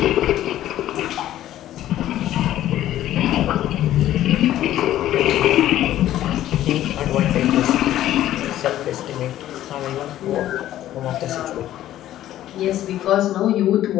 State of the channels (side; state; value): right; quieter; 13.0 dB